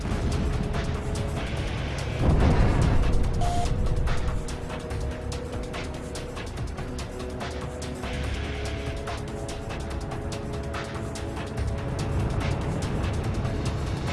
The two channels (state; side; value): identical; both; correlation 1.00